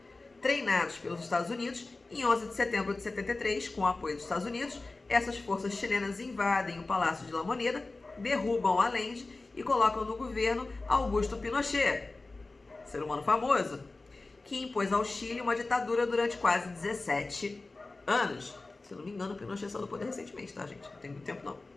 treinados pelos Estados Unidos, em 11 de setembro de 73, com o apoio dos Estados Unidos, essas forças chilenas invadem o Palácio de La Moneda, derrubam Allende e colocam no governo Augusto Pinochet, ser humano famoso, que impôs ao Chile uma ditadura durante quase 17 anos. Se eu não me engano, Pinochet saiu do poder recentemente, tá, gente? Não tem muito tempo, não.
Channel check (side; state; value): right; quieter; 3.4 dB